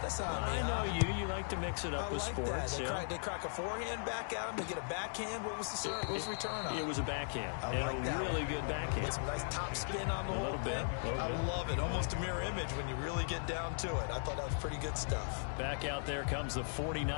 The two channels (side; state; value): right; silent; digital silence